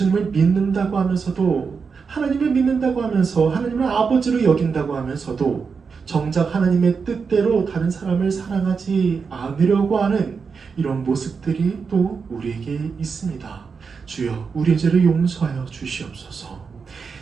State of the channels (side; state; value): left; quieter; 5.4 dB